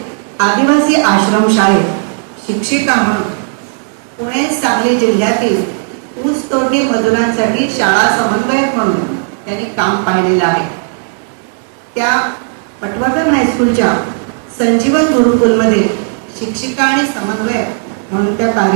आदिवासी आश्रमशाळेत शिक्षिका म्हणून, पुणे सांगली जिल्ह्यातील ऊसतोडणी मजुरांसाठी शाळा समन्वयक म्हणून त्यांनी काम पाहिलेलं आहे. त्या पटवर्धन हायस्कूलच्या संजीवन गुरुकुलमध्ये शिक्षिका आणि समन्वयक म्हणून त्या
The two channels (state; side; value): silent; left; digital silence